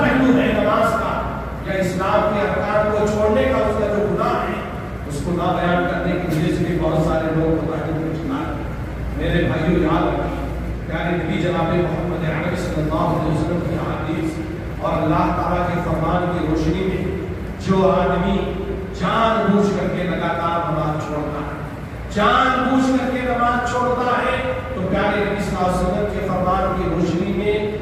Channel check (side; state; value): both; identical; correlation 1.00